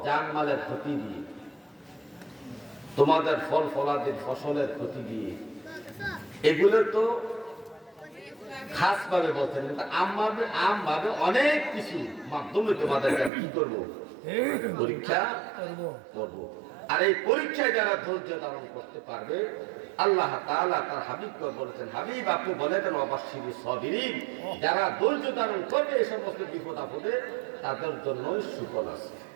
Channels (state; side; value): drops out; left; at 13.3 s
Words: জানমালের ক্ষতি দিয়ে, তোমাদের ফল ফলাদির ফসলের ক্ষতি দিয়ে। এগুলো তো খাস ভাবে বলছেন, কিন্তু আম ভাবে অনেক কিছু মাধ্যমে তোমাদেরকে কি করবো? পরীক্ষা করবো। আর এই পরীক্ষায় যারা ধৈর্য ধারণ করতে পারবে, আল্লাহ তাআলা তার হাবিবকে বলেছেন, হাবিব আপনি বলে দেন ওয়াবাশশিরিস সাবিরিন, যারা ধৈর্য ধারণ করবে এই সমস্ত বিপদ আপদে, তাদের জন্য সুফল আছে।